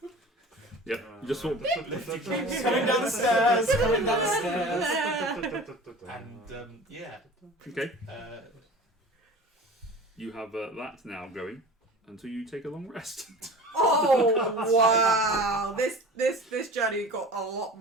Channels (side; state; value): both; normal; correlation 0.39